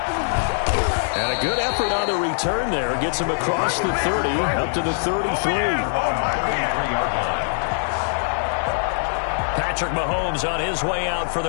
And a good effort on the return there. Gets him across the 30, up to the 33. Patrick Mahomes on his way out for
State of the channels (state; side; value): silent; right; digital silence